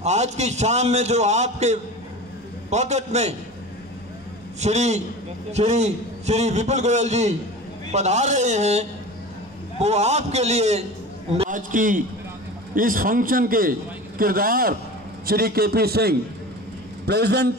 आज की शाम में जो आपके पॉकेट में श्री विपुल गोयल जी पधार रहे हैं, वो आपके लिए आज की इस फंक्शन के किरदार Shri KP Singh, president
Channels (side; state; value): both; normal; correlation 0.35